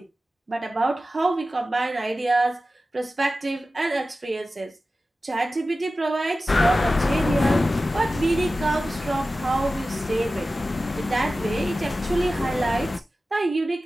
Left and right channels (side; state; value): both; normal; correlation 0.95